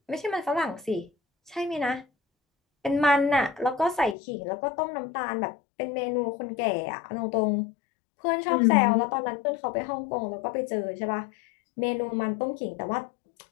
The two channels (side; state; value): right; drops out; at 4.2 s